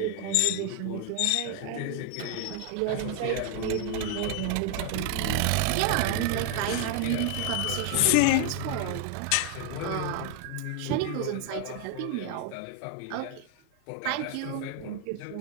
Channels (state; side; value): different; both; correlation 0.00